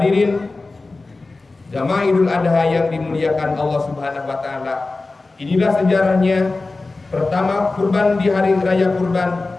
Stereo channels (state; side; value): quieter; right; 3.5 dB